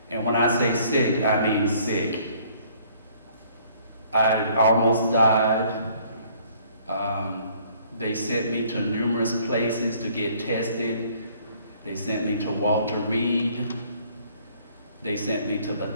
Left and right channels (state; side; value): inverted; both; correlation -0.60